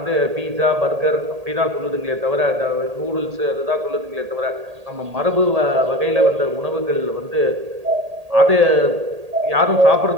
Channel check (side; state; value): left; late; 1.8 ms